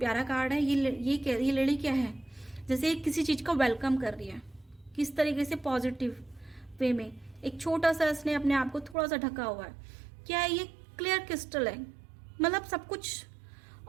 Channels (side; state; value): left; drops out; at 9.0 s